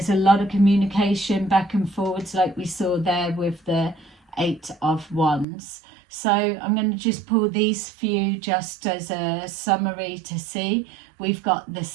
a lot of communication back and forwards, like we saw there with the Eight of Wands. So I'm going to just pull these few just as a summary to see. We've got the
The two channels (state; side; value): drops out; left; at 5.5 s